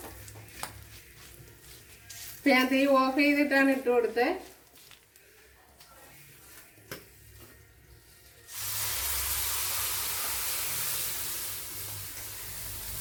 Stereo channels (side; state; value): both; identical; correlation 1.00